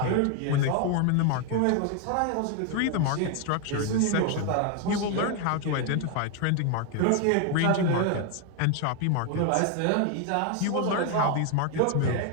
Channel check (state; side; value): different; both; correlation 0.01